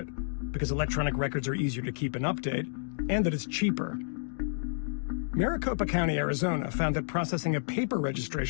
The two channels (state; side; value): silent; right; digital silence